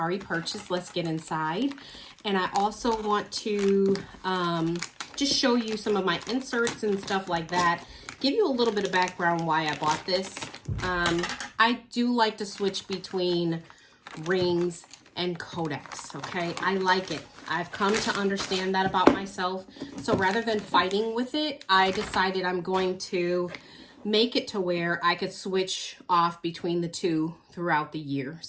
purchase. Let's get inside. And I also want to just show you some of my inserts and stuff like that. Give you a little bit of background why I bought this. I do like to switch between rings and codex, okay? I like it. I've come to understand that about myself. So rather than fighting with it, I decided I'm going to make it to where I could switch off between the two throughout the year.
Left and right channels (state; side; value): identical; both; correlation 1.00